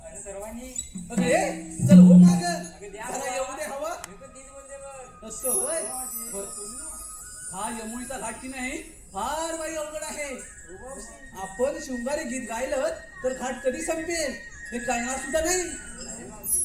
आणि सर्वांनी अगं ये चल हो माग द्या जरा येऊ दे हवा. मी पण तीच बोलते बघ. असं होय. बरं पोरीनो, हा यमुळीचा घाट की नाही फार बाई अवघड आहे. आपण शृंगारी गीत गायलं तर घाट कधी संपेल हे कळणार सुद्धा नाही.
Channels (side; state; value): both; identical; correlation 1.00